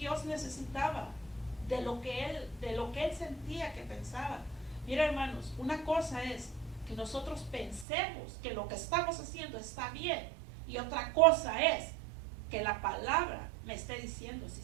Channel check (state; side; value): drops out; left; at 7.9 s